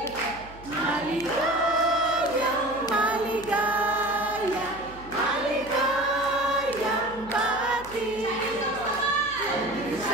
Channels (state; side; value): noise; right; hum, 18 dB below the sound